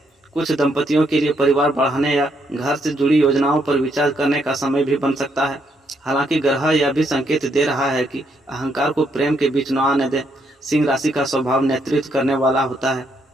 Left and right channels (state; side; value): normal; both; correlation 0.75